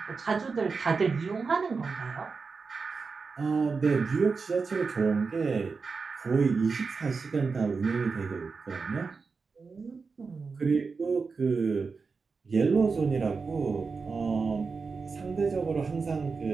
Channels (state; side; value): quieter; left; 4.7 dB